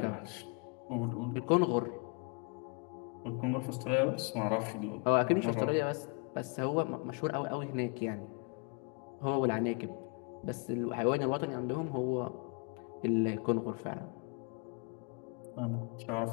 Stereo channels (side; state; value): right; quieter; 34.9 dB